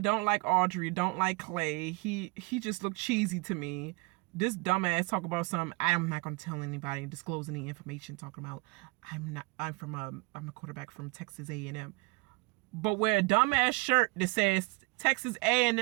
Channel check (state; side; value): quieter; left; 26.8 dB